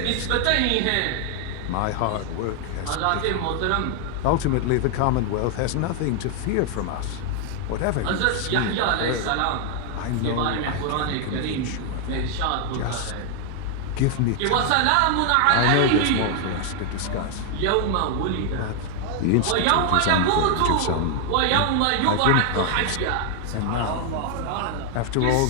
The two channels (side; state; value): both; different; correlation 0.00